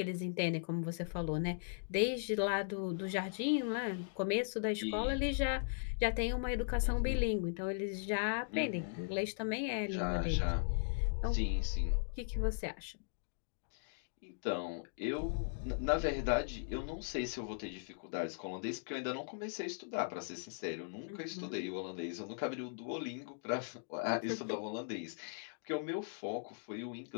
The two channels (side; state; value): right; silent; digital silence